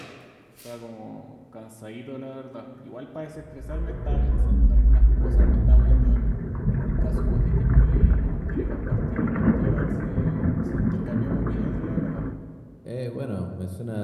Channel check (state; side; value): identical; both; correlation 1.00